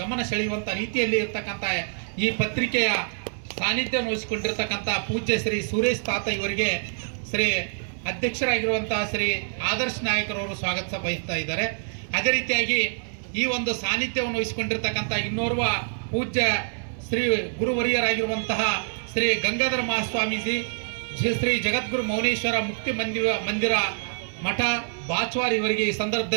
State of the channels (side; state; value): left; silent; digital silence